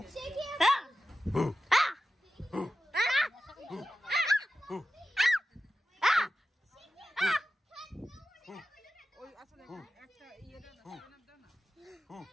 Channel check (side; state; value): both; normal; correlation 0.93